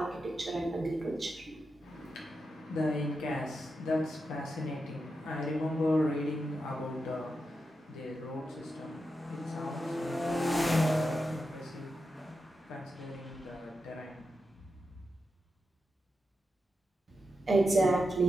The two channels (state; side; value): normal; both; correlation 0.88